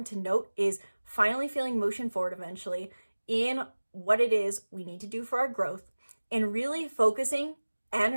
to note is finally feeling motion forward eventually in what it is we need to do for our growth, and really focusing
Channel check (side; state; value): both; inverted; correlation -1.00